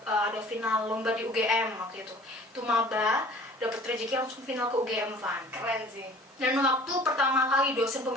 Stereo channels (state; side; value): normal; both; correlation 0.48